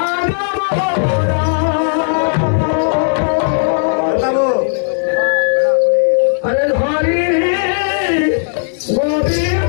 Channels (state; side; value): silent; right; digital silence